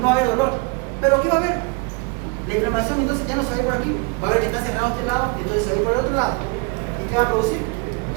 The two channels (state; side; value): quieter; left; 29.7 dB